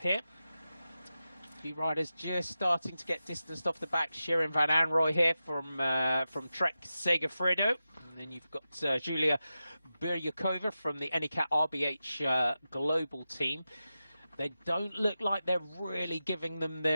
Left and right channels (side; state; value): both; inverted; correlation -0.92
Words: here. A few riders just starting to get distanced off the back. Shirin van Anrooy here from Trek Segafredo, and then you've got Julia Biryakova from the Anycat RBH global team. They don't look like they're really giving them